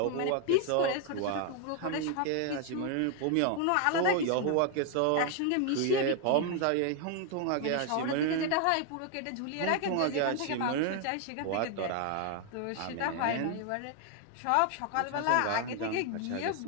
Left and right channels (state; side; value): different; both; correlation 0.00